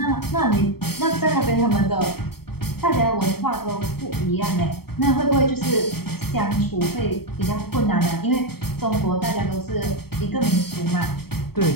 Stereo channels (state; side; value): late; right; 0.95 ms